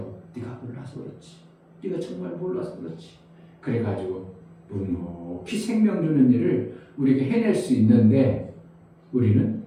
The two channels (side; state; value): both; identical; correlation 1.00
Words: 네가 몰라서 그렇지. 네가 정말 몰라서 그렇지. 그래가지고 묵묵히 생명 주는 일을 우리에게 해낼 수 있는데 우리는